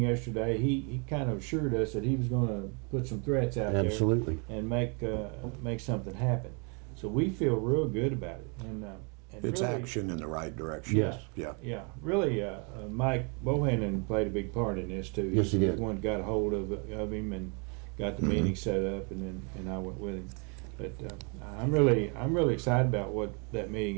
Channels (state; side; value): quieter; left; 35.4 dB